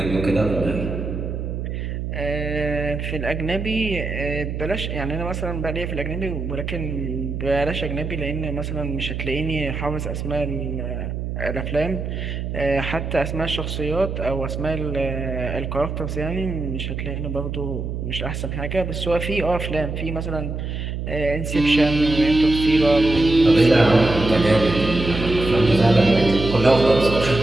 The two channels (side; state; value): right; noise; hum, 4 dB below the sound